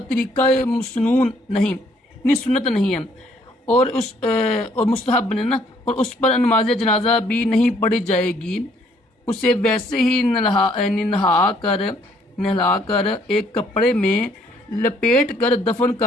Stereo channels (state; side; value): normal; both; correlation 0.65